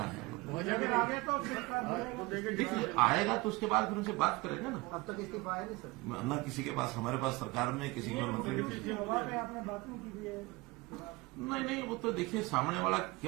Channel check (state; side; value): quieter; left; 23.2 dB